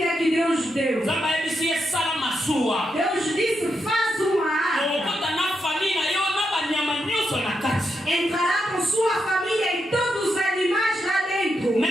que Deus deu. Nzamba yebisi esala masuwa. Deus disse, faz uma arca. Okota na famille yo na banyama nyonso na kati. Entrará com sua família e todos os animais lá dentro.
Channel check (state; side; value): normal; both; correlation 0.83